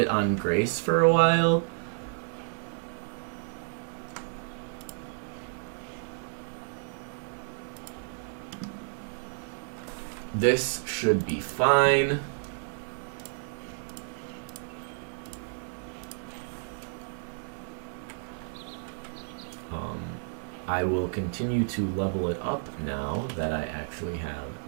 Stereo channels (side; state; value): left; silent; digital silence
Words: on Grace for a while. This should be fine. I will continue to level it up now that I actually